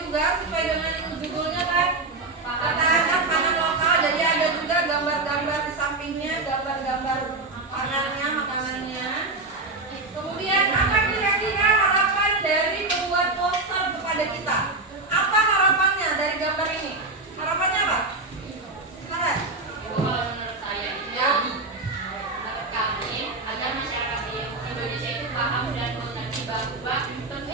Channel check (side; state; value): left; quieter; 3.3 dB